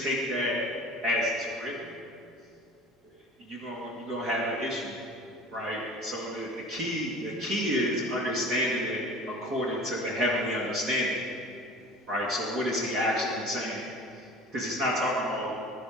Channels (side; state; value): both; normal; correlation 0.41